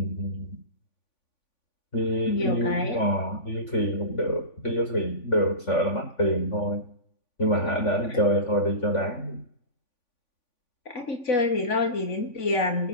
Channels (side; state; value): right; late; 3.5 ms